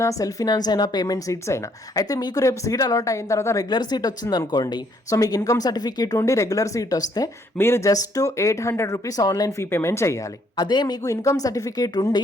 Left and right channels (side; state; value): both; normal; correlation 0.68